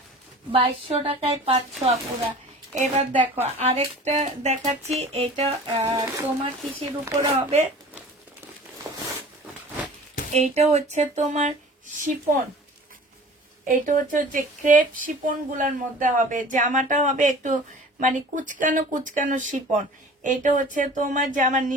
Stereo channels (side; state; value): both; normal; correlation 0.43